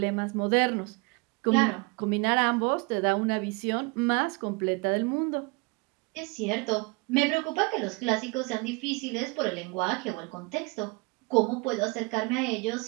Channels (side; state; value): left; quieter; 28.2 dB